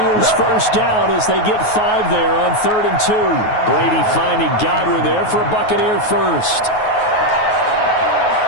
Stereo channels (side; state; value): right; late; 9.4 ms